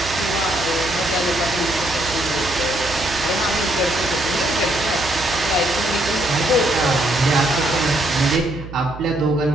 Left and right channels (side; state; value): right; noise; hum, 13 dB below the sound